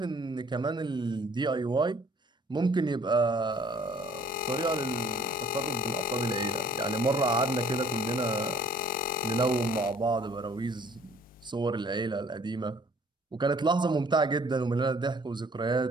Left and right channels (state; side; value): normal; both; correlation 0.56